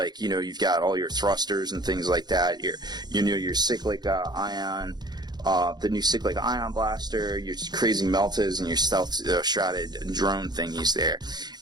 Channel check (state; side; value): late; left; 0.20 ms